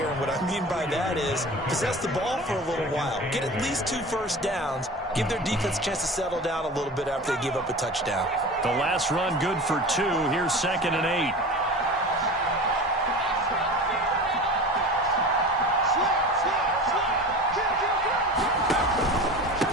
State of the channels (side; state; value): both; normal; correlation 0.34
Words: And what I mean by that is possess the ball for a little while. Get at least 2 first downs. Give their defense a chance to settle down a little bit after they give up a touchdown. The last run good for 2. Here's 2nd and